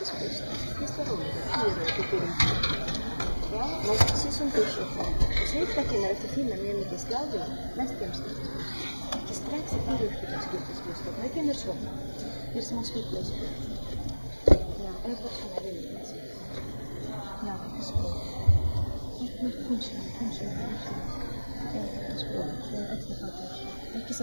schysst. Visst var roligt? 4 på Turinki. Ja, men precis som du sa. Och så yhtäkkiä ne lähti finna mielenkiintoista stadion. Näistä jämskistä. Ja strax i Piruskytäskytäskystä. Men jag känner så. Det är som en svittläsby. Ja, en person är väldigt. Ja, det är så. Men kanske. Ekki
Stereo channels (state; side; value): inverted; both; correlation -1.00